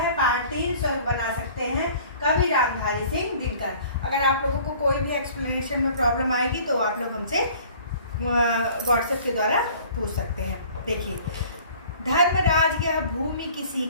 पार्ट 3 स्वर्ग बना सकते हैं कवि रामधारी सिंह दिनकर। अगर आप लोगों को कोई भी एक्सप्लेनेशन में प्रॉब्लम आएगी तो आप लोग हमसे व्हाट्सएप के द्वारा पूछ सकते हैं। देखिए, धर्मराज यह भूमि किसी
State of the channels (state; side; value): inverted; both; correlation -0.50